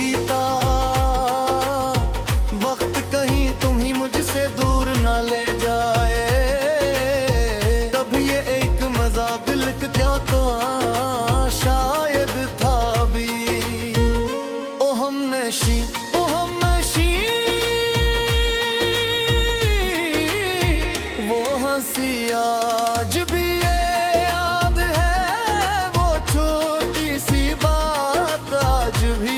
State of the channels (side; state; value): both; identical; correlation 1.00